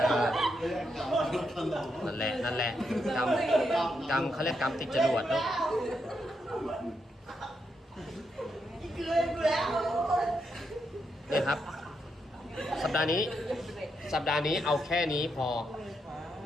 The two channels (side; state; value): both; normal; correlation 0.81